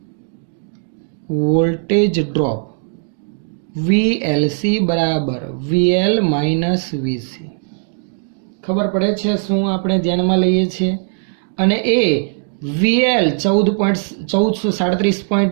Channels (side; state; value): left; silent; digital silence